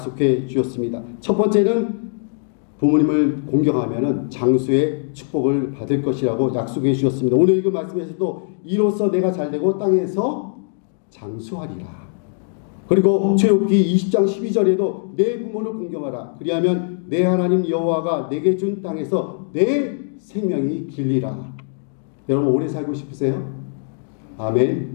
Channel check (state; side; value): silent; right; digital silence